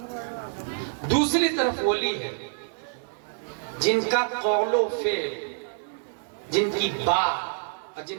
دوسری طرف ولی ہے جن کا قول و فعل، جن کی بات،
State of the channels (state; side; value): silent; left; digital silence